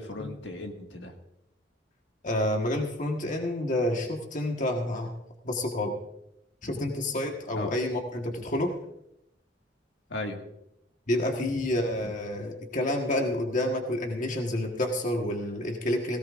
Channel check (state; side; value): normal; both; correlation 0.48